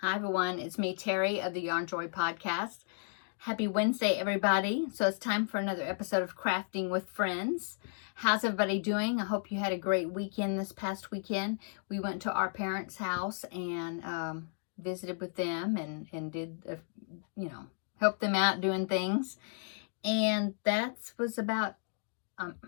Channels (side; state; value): right; silent; digital silence